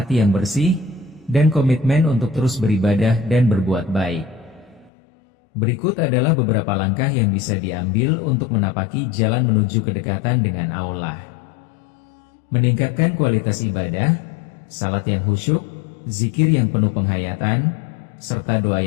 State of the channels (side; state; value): right; drops out; at 4.9 s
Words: yang bersih, dan komitmen untuk terus beribadah dan berbuat baik. Berikut adalah beberapa langkah yang bisa diambil untuk menapaki jalan menuju kedekatan dengan Allah. Meningkatkan kualitas ibadah, salat yang khusyuk, zikir yang penuh penghayatan, serta doa